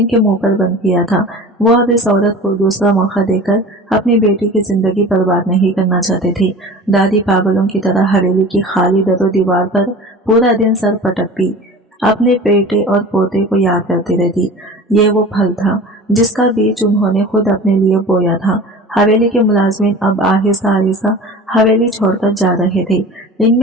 मुंह पर बंद किया था। वो अब इस औरत को दूसरा मौका देकर अपनी बेटी की जिंदगी बर्बाद नहीं करना चाहते थे। दादी पागलों की तरह हवेली की खाली दरो दीवार पर पूरा दिन सर पटकती, अपने बेटे और पोते को याद करती रहती। ये वो फल था जिसका बीज उन्होंने खुद अपने लिए बोया था। हवेली के मुलाजमीन अब आहिस्ता आहिस्ता हवेली छोड़कर जा रहे थे।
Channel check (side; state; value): both; normal; correlation 0.38